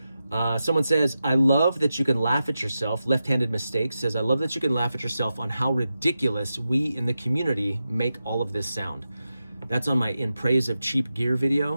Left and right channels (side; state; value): both; inverted; correlation -0.90